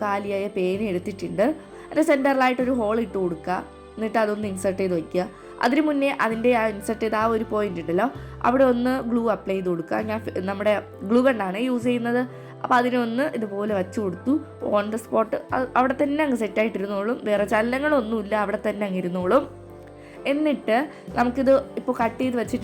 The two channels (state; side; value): identical; both; correlation 1.00